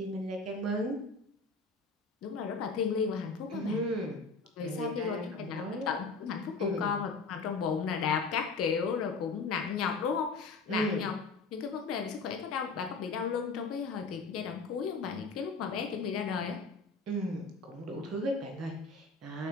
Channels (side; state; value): right; quieter; 4.0 dB